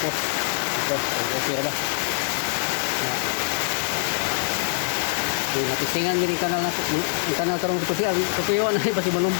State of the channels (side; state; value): right; silent; digital silence